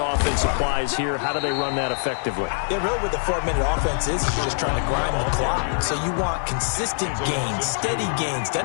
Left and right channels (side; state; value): right; silent; digital silence